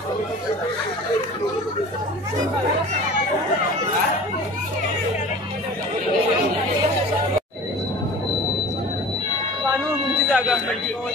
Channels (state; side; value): normal; both; correlation 0.41